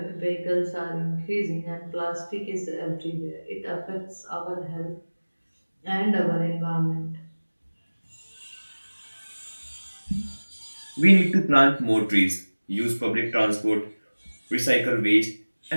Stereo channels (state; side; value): inverted; both; correlation -1.00